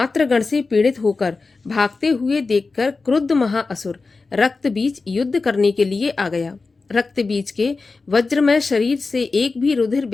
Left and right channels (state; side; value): quieter; right; 4.0 dB